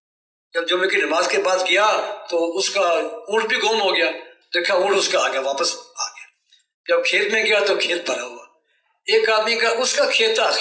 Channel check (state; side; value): identical; both; correlation 1.00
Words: جب جمعے کی نماز کے بعد گیا تو اس کا اونٹ بھی گم ہو گیا. دیکھا اونٹ اس کا آ گیا، واپس آ گیا. جب کھیت میں گیا تو کھیت بھرا ہوا. ایک آدمی کا اس کا کھیت تھا